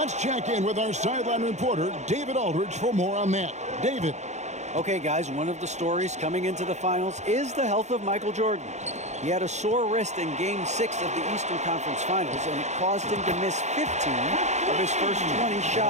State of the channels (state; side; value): late; left; 0.33 ms